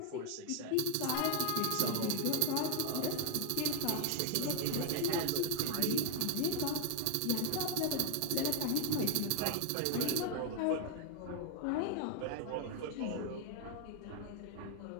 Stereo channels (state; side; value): different; both; correlation 0.00